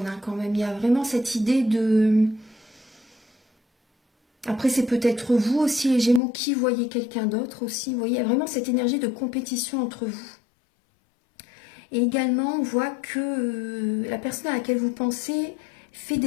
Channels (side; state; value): right; drops out; at 6.2 s